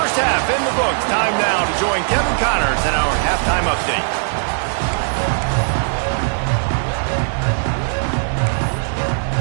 half in the books. Time now to join Kevin Connors in our halftime update.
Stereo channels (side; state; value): left; silent; 56 dB below the other